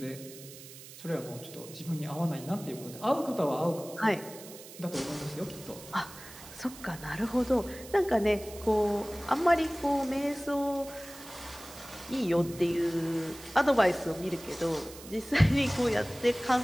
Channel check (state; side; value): noise; right; hiss, 16 dB below the sound